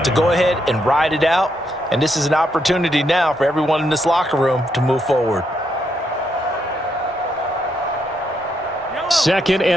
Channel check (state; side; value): normal; both; correlation 0.78